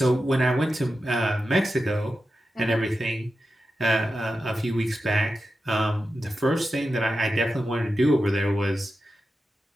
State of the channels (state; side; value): normal; both; correlation 0.91